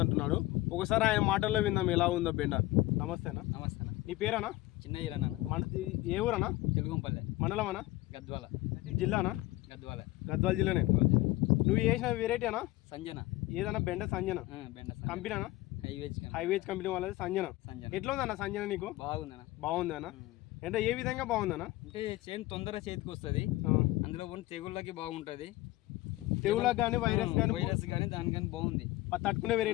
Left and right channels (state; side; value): quieter; right; 18.4 dB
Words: అంటున్నాడు. ఒకసారి ఆయన మాటల్లో విందాం ఎలా ఉందో బెండ. నమస్తే అన్న. నమస్తే అన్న. నీ పేరన్నా? చిన్న ఈరన్న. ఏ ఊరన్నా? తెలుగుంపల్లె మండలం అన్న? గద్వాల. జిల్లానా? గద్వాల. గద్వాల జిల్లానే. నువ్వు చేసిన వెరైటీ అన్నా? సంజన. ఏదన్నా బెండ సంజన బెండ కంపెనీ అన్న? హైవేజ్ కంపెనీ వాళ్ళది సంజన. ఎట్లా ఉందన్న సంజన నీకు? బాగుందన్న. బాగుంది అన్న. అంటే ఏ విధంగా బాగుందన్న? అంటే చేను తొందర చేతికి వస్తుంది, అందులో ఉన్న తెగుళ్ళకి బాగుంటుంది. తెగుళ్ళకి కానీ వైరస్ కానీ దాని కానీ బాగుంది. తట్టుకునే